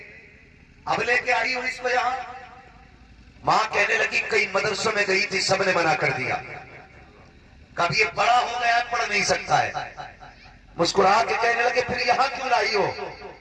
اب لے کے آئی ہوں اس کو یہاں؟ ماں کہنے لگی کئی مدرسوں میں گئی تھی سب نے منع کر دیا، کب یہ بڑا ہو گیا پڑھ نہیں سکتا ہے۔ مسکرا کے کہنے لگے پھر یہاں کیوں لائی ہو؟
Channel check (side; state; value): both; identical; correlation 1.00